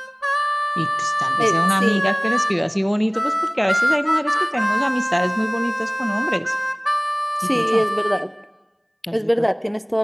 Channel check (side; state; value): both; identical; correlation 1.00